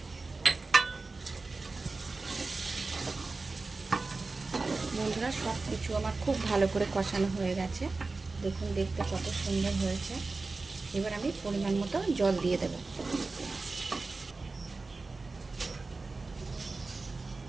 বন্ধুরা, সব কিছু আমার খুব ভালো করে কষানো হয়ে গেছে। দেখুন, দেখতে কত সুন্দর হয়েছে। এবার আমি পরিমাণ মতো জল দিয়ে দেব।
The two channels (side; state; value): left; quieter; 3.7 dB